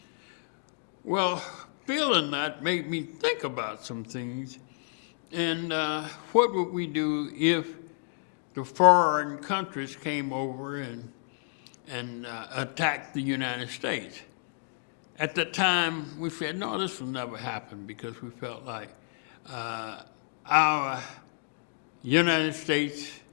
Well, feeling that made me think about some things. And what would we do if the foreign countries came over and attacked the United States? At the time, we said, no, this will never happen, because we felt like our United States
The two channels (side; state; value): right; silent; digital silence